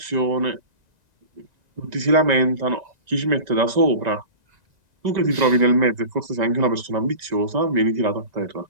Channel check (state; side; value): late; left; 1.9 ms